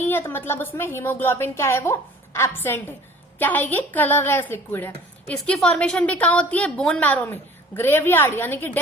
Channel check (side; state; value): both; normal; correlation 0.49